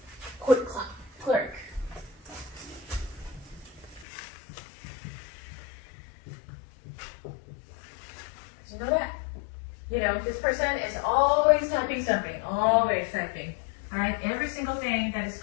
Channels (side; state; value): right; drops out; at 4.0 s